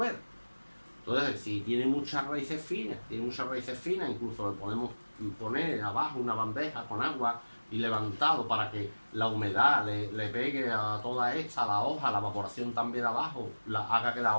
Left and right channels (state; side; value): inverted; both; correlation -1.00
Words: Entonces, si tiene muchas raíces finas, incluso le podemos poner abajo una bandeja con agua y levantado para que la humedad le pegue a toda esta, a la hoja, la evaporación también abajo, haga que la